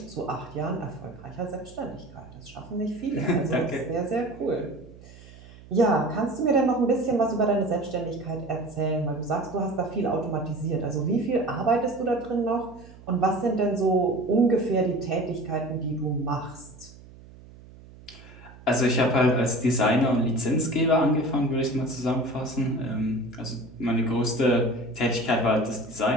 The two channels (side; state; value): right; noise; hum, 20 dB below the sound